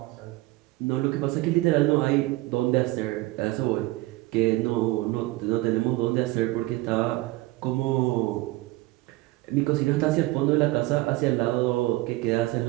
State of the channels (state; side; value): quieter; left; 19.9 dB